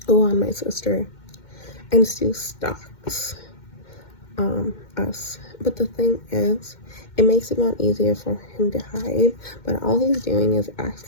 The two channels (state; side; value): late; right; 2.1 ms